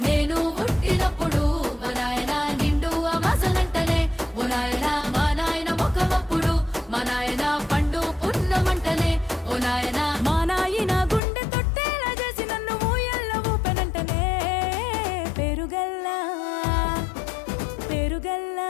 నేను పుట్టినప్పుడు మా నాయన నిండు అమాసనంటనే ఓ నాయన మా నాయన ముఖమప్పుడు మా నాయన పండు పున్నమంటనే ఓ నాయన మా నాయన గుండె తొట్టేలా చేసి నన్ను ఊయల్ల ఊపెనంటనే పెరుగల్లా పెరుగల్లా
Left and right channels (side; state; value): right; drops out; at 11.2 s